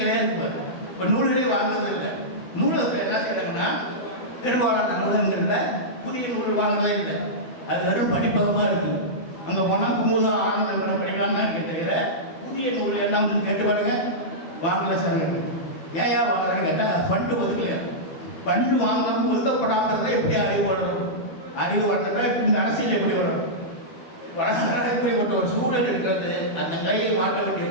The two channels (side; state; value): right; late; 12 ms